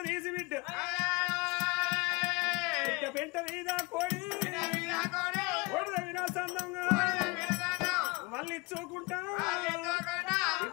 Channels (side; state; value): right; quieter; 25.6 dB